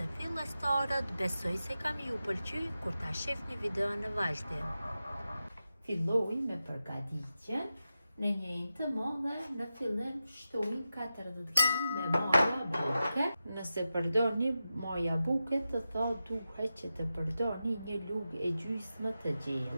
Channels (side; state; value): both; inverted; correlation -0.91